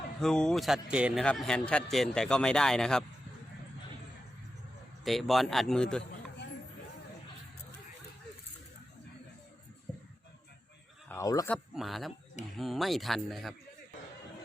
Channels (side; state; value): both; normal; correlation 0.90